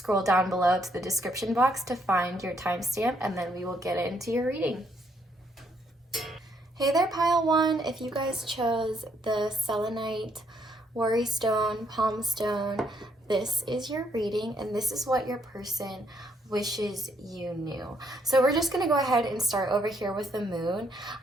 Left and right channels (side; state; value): both; normal; correlation 0.72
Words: down below to the description box to find your timestamp, and then we will get into your reading. Hey there, pile 1. If you guys chose the selenite, worry stone, palm stone, this is your reading, and this is what your person wishes you knew. So we're just going to go ahead and start over here with the moon.